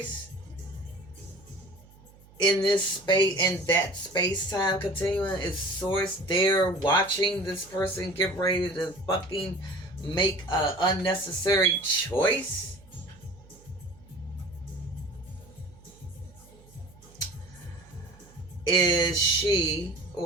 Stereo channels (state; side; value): noise; right; hum, 24 dB below the sound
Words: In this space, in that space-time continuum? Is Source there watching this person get ready to fucking make an unnecessary choice? Is she